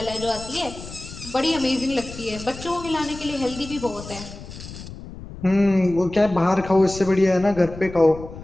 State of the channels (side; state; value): left; noise; rumble, 13 dB below the sound